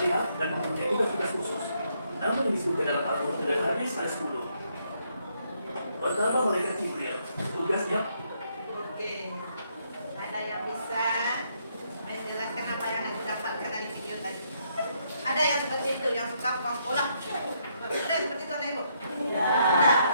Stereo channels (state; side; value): inverted; both; correlation -0.74